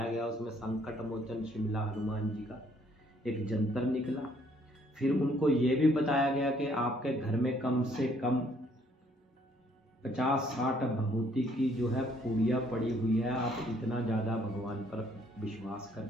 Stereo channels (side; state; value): both; normal; correlation 0.65